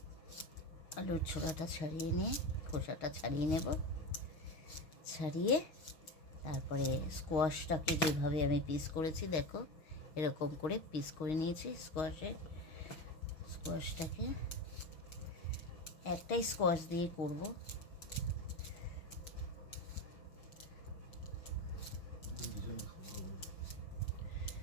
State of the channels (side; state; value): right; late; 6.3 ms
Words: আলুর ছোলাটা ছাড়িয়ে নিয়ে খোসাটা ছাড়িয়ে নেব, ছাড়িয়ে তারপরে স্কোয়াশটাকে যেভাবে আমি পিস করেছি দেখো এরকম করে পিস করে নিয়েছি। স্কোয়াশটাকে একটাই স্কোয়াশ দিয়ে করব।